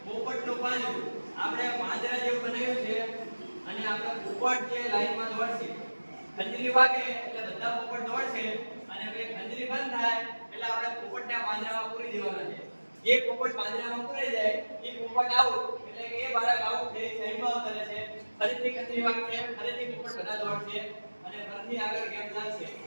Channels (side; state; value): both; inverted; correlation -1.00